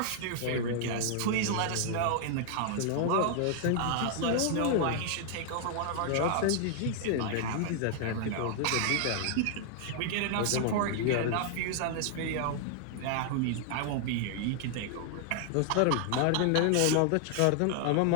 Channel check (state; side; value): different; both; correlation 0.00